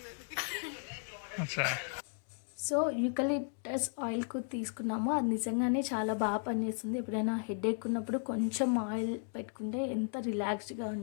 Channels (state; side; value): silent; right; 54 dB below the other